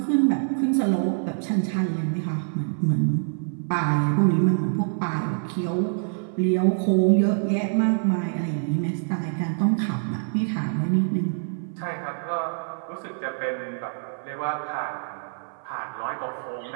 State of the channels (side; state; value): left; silent; 59 dB below the other